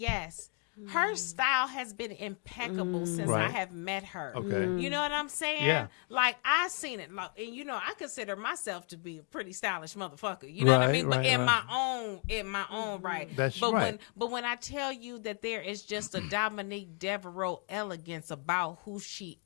Her style has been impeccable since I Right. have met her. Okay. You know what I'm saying? Yeah. Like, I seen it. Like, and you know, I consider myself to be a pretty stylish motherfucker. You know what I Right, mean? But right, in right. my own right. That's but right. when I tell you that there is just a Dominique Devereaux elegance about who she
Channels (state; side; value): quieter; right; 37.3 dB